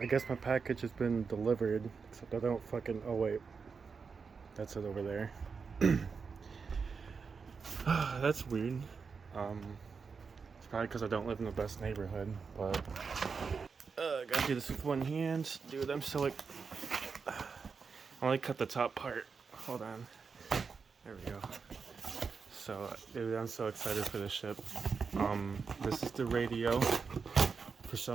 guess my package has been delivered, except I don't fucking, oh wait, that's it over there. That's weird. It's probably because I don't live in the best neighborhood, but gotta do this with one hand. Dude, I'm so like, I only cut the top part. Hold on. There we go. So, dude, I'm so excited for this ship. This is the radio. For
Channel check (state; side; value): quieter; left; 5.3 dB